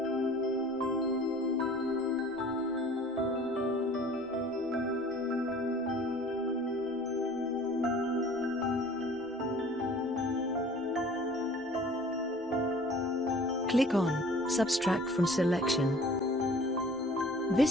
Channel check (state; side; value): normal; both; correlation 0.49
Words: Click on Subtract from Selection.